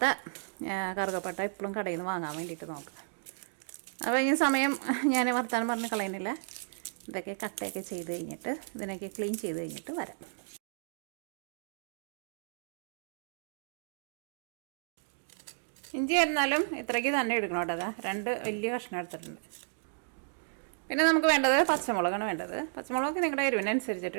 കറുകപ്പട്ട ഇപ്പോഴും കടയിൽ നിന്ന് വാങ്ങാൻ വേണ്ടിയിട്ട് നോക്കുക. അപ്പോൾ ഈ സമയം ഞാൻ വർത്താനം പറഞ്ഞ് കളയുന്നില്ല. ഇതൊക്കെ കട്ടയൊക്കെ ചെയ്ത് കഴിഞ്ഞിട്ട് ഇതിനൊക്കെ ക്ലീൻ ചെയ്ത് കഴിഞ്ഞിട്ട് വരാം. ഇഞ്ചി ആയിരുന്നാലും ഇത്രയ്ക്ക് തന്നെ എടുക്കണം കേട്ടോ. 2 വലിയ കഷ്ണം എടുത്തിട്ടുണ്ട്. പിന്നെ നമുക്ക് വേണ്ടത് പച്ചമുളകാണ് വേണ്ടത്. പച്ചമുളക് നിങ്ങളുടെ എരിവിനനുസരിച്ചിട്ട്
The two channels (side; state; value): left; silent; digital silence